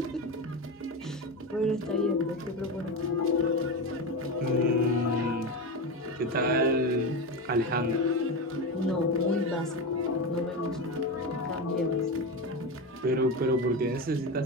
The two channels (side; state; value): both; normal; correlation 0.18